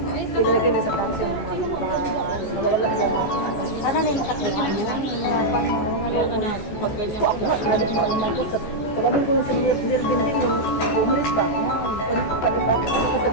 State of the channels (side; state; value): right; late; 14 ms